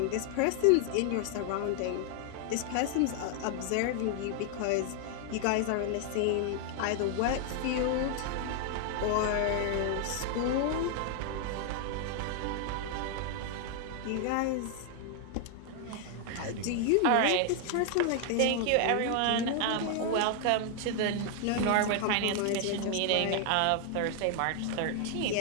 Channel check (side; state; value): both; different; correlation 0.00